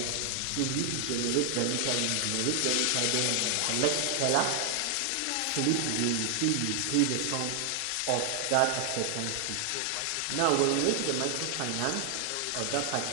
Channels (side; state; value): both; different; correlation 0.00